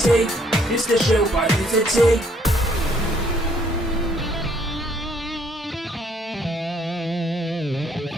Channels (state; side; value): normal; both; correlation 0.66